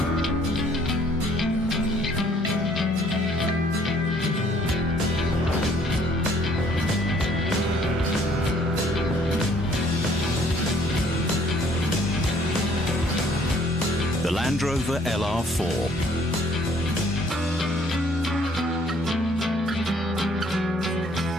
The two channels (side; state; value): both; normal; correlation 0.61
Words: The Land Rover LR4.